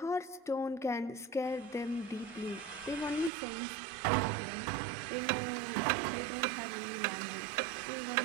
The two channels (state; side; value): drops out; left; at 3.3 s